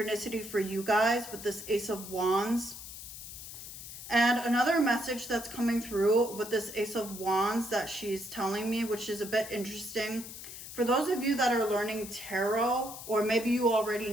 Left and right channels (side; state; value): left; noise; hiss, 12 dB below the sound